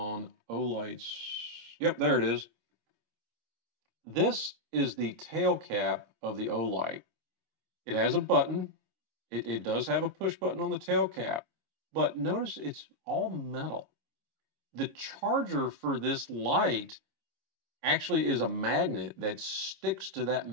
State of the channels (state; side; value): late; left; 26 ms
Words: Olight's. Yep, there it is. This is the tail cap of the Olight. It has a button. It does have a push button on the tail cap, but notice it's all metal. The charger for this light actually is a magnet that sticks to that